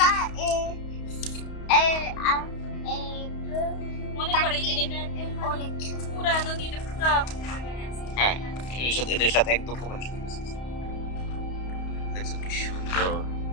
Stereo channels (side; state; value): right; late; 31 ms